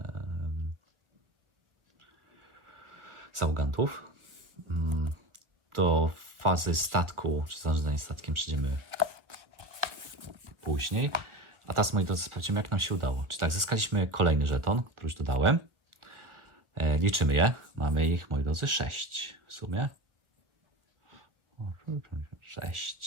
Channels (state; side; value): late; left; 1.4 ms